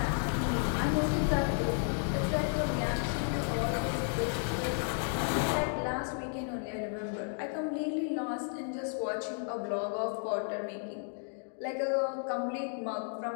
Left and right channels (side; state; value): right; silent; 56 dB below the other